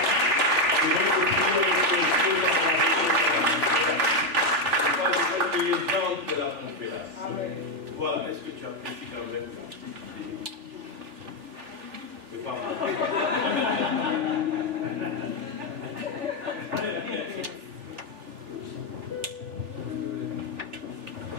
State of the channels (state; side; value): late; left; 3.4 ms